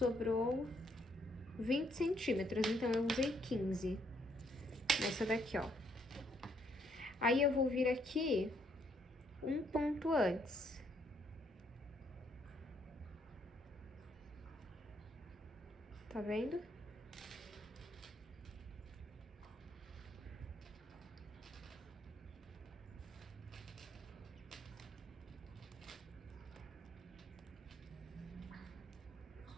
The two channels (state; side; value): normal; both; correlation 0.71